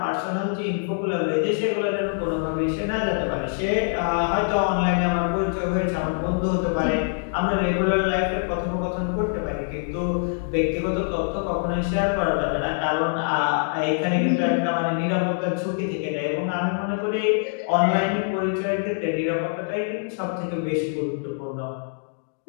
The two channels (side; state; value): right; silent; digital silence